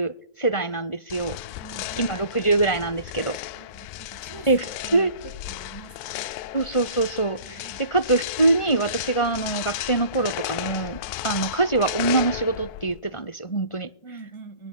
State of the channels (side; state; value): right; late; 1.4 ms